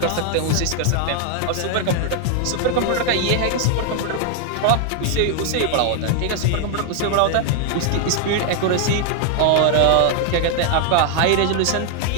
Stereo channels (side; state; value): both; different; correlation 0.00